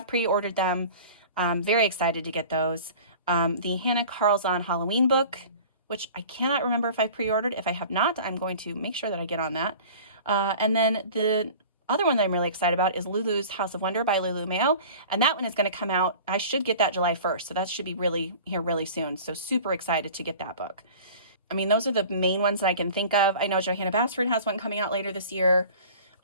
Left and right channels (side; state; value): both; inverted; correlation -0.42